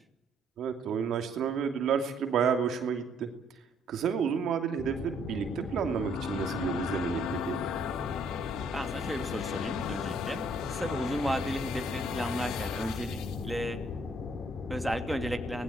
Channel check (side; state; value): both; normal; correlation 0.65